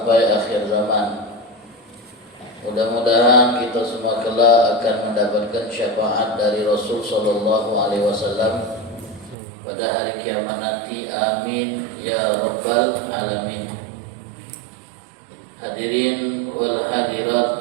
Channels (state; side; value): drops out; left; at 9.3 s